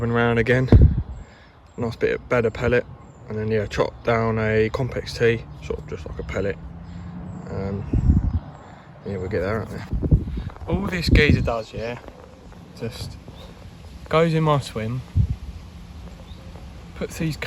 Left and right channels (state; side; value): identical; both; correlation 1.00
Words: around again. Nice bit of better pellet, and then yeah, chop down a complex T, sort of just like a pellet. Yeah, we'll get there, aren't we? All this geezer does, yeah, just goes in my swim, puts these